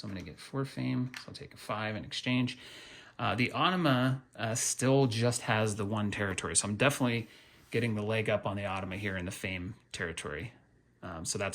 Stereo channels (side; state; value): both; identical; correlation 1.00